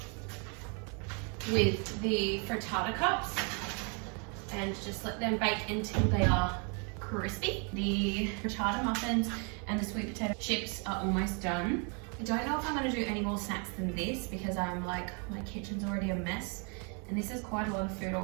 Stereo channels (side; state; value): left; quieter; 36.4 dB